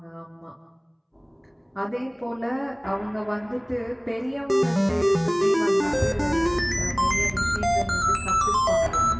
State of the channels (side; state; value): both; identical; correlation 1.00